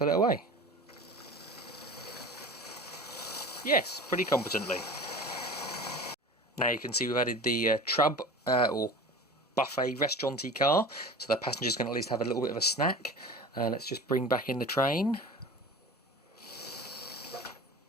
it away? Yes, pretty competently. Now you can see we've added the trub or buffet restauranty car, so the passengers can at least have a little bit of a snack. Let's just bring back in the train.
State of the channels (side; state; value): both; normal; correlation 0.37